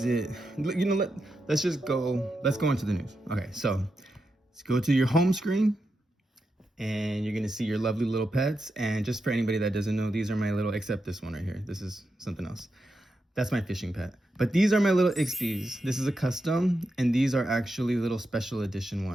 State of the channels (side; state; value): both; normal; correlation 0.87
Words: it? Let's go into the news. Okay, so let's go to your home screen and you're going to see your lovely little pets. And just for anybody that doesn't know, these are my except this one right here. This is something else. That's my fishing pet. But these are my little Ixpies. This is a custom, and these are actually little special edition